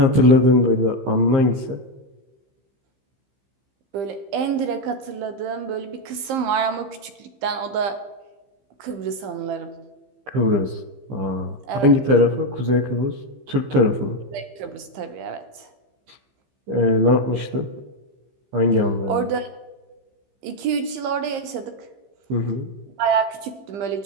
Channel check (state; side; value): late; left; 15 ms